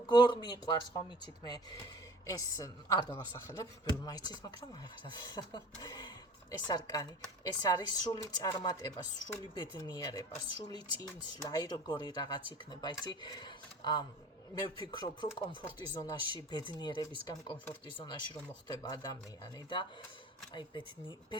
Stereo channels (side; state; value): both; normal; correlation 0.44